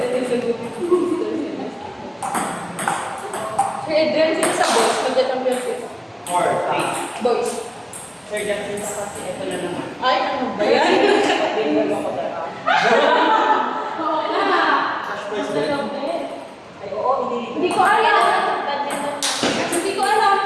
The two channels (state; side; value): identical; both; correlation 1.00